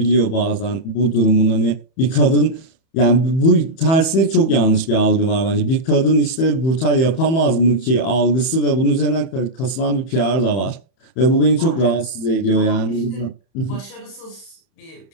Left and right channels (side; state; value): right; late; 31 ms